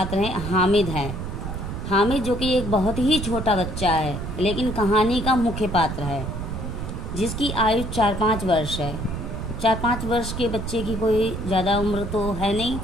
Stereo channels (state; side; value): noise; right; rumble, 6 dB below the sound